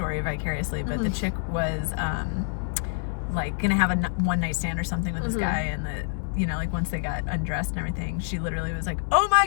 vicariously, but the chick was like gonna have a one night stand or something with this guy, and you know, like once they got undressed and everything, she literally was like, oh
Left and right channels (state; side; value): silent; right; digital silence